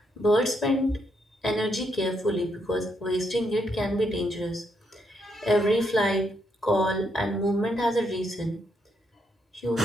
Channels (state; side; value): normal; both; correlation 0.77